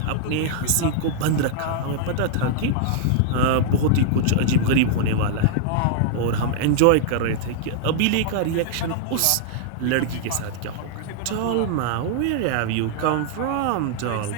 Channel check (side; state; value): both; different; correlation -0.01